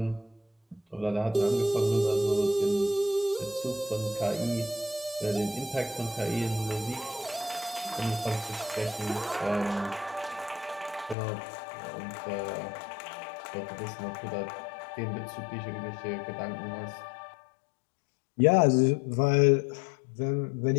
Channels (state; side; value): drops out; right; at 11.2 s